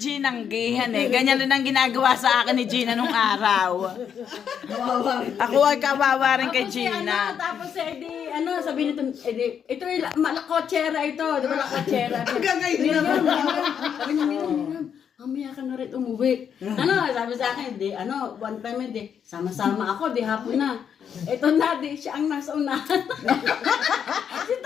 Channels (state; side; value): quieter; right; 8.0 dB